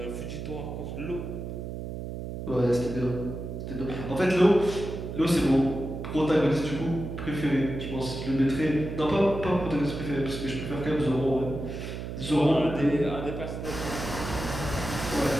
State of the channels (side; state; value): right; noise; hum, 7 dB below the sound